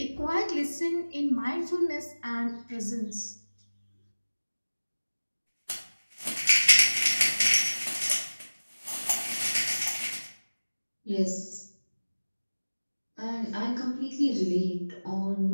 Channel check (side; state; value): both; inverted; correlation -1.00